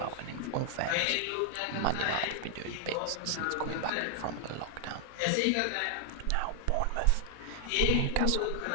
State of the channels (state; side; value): different; both; correlation 0.00